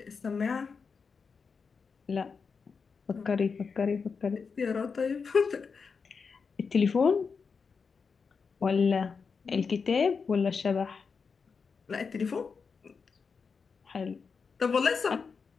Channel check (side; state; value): right; quieter; 5.4 dB